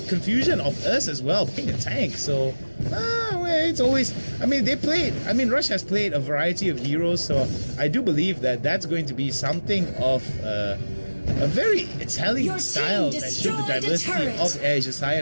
confusion of us as well, being a tank. So it's always, Rush has played a variety of heroes, so I do believe that that's going to be something of a very Italian style that showed the diversity of Asia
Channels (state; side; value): inverted; both; correlation -1.00